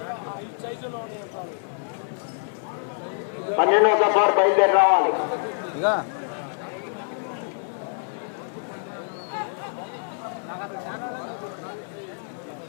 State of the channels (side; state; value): right; silent; digital silence